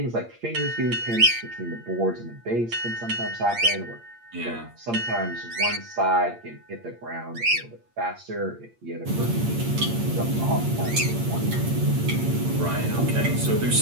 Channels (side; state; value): left; late; 8.6 ms